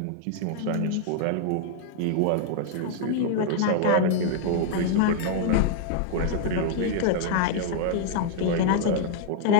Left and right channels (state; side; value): different; both; correlation 0.00